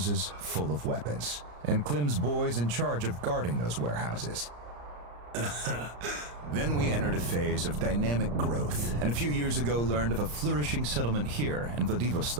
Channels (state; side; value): late; left; 34 ms